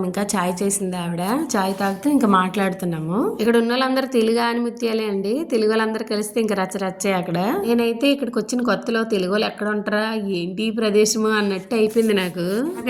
ఇంకా చాయ్ చేసింది ఆవిడ. చాయ్ తాగుతూ ఇంకా మాట్లాడుతున్నాము. ఇక్కడ ఉన్న వాళ్ళందరూ తెలుగు ఆనిముత్యాలే అండి. తెలుగు వాళ్ళందరూ కలిస్తే ఇంకా రచ్చరచ్చే అక్కడ. నేనైతే ఇక్కడికి వచ్చిన కొత్తలో తెలుగు వాళ్ళు ఎక్కడ ఉంటారా, ఏంటి ప్రదేశము అన్నట్టు అయిపోయింది నాకు.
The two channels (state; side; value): identical; both; correlation 1.00